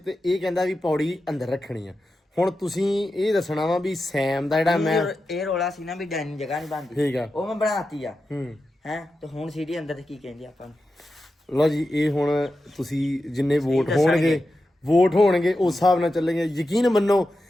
ਇਹ ਕਹਿੰਦਾ ਵੀ ਪੌੜੀ ਅੰਦਰ ਰੱਖਣੀ ਆ। ਹੁਣ ਤੁਸੀਂ ਇਹ ਦੱਸਣਾ ਵਾ ਵੀ ਸੈਮ ਦਾ ਜਿਹੜਾ ਮੈਂ ਇਹ ਰੋਲਾ ਸੀ ਨਾ ਵੀ ਡਾਈਨਿੰਗ ਜਗ੍ਹਾ ਨਹੀਂ ਬਣਦੀ, ਠੀਕ ਆ, ਉਹ ਮੈਂ ਬਣਾਤੀ ਆ ਹੂੰ ਹੈ। ਤੇ ਹੁਣ ਸੀਡੀ ਅੰਦਰ ਤੇ ਕੀ ਕਹਿੰਦੇ ਆਪਾਂ ਨੂੰ? ਲਓ ਜੀ, ਇਹ ਹੁਣ ਤੁਸੀਂ ਜਿੰਨੇ ਵੋਟ ਹੋਣਗੇ ਉਸ ਹਿਸਾਬ ਨਾਲ ਚੱਲੇਗੇ। ਯਕੀਨ ਮੰਨੋ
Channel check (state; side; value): normal; both; correlation 0.90